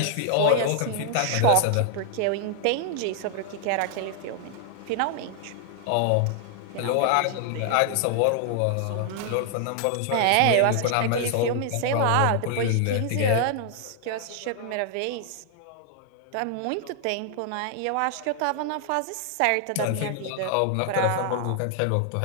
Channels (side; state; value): both; different; correlation 0.00